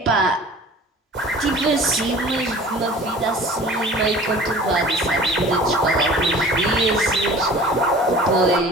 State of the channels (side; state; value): both; normal; correlation 0.44